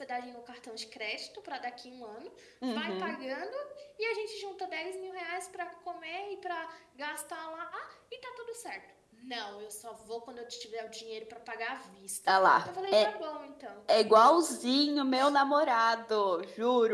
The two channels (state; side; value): identical; both; correlation 1.00